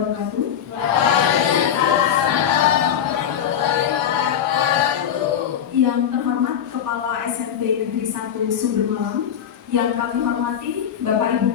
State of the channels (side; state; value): right; quieter; 9.0 dB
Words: Yang terhormat Kepala SMP Negeri 1 Sumber Malang, yang kami hormati Bapak Ibu